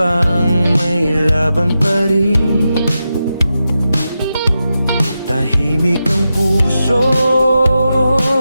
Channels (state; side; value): inverted; both; correlation -0.89